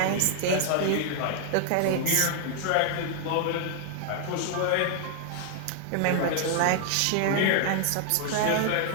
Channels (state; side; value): different; both; correlation 0.00